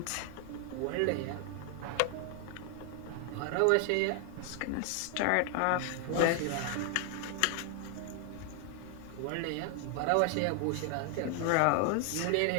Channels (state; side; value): different; both; correlation 0.00